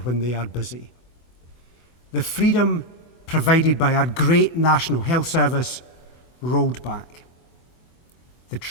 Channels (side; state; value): right; late; 24 ms